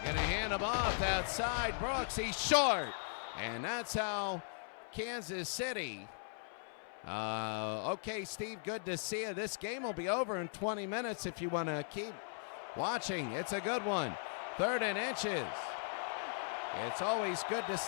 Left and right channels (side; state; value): right; silent; 52 dB below the other